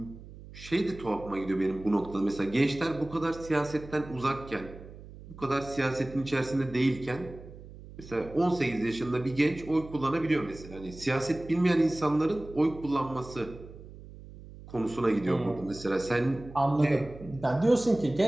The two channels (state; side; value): noise; right; hum, 16 dB below the sound